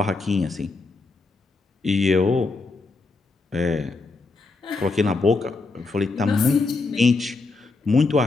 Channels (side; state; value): right; quieter; 3.8 dB